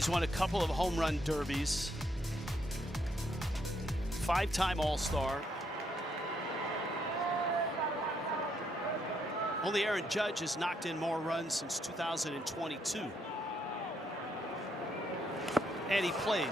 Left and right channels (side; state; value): both; normal; correlation 0.75